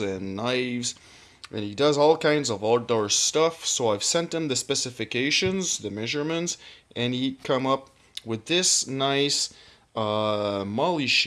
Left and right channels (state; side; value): identical; both; correlation 1.00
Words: knives, and he does all kinds of outdoor stuff. So I've sent him the specifications, the measurements, and he come up with this nice Molle